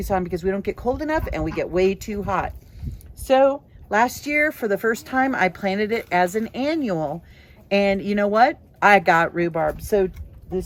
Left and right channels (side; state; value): both; identical; correlation 1.00